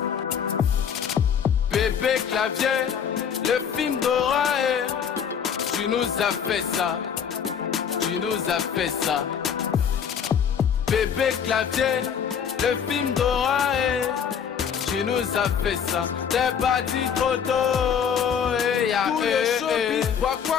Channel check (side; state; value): right; quieter; 7.6 dB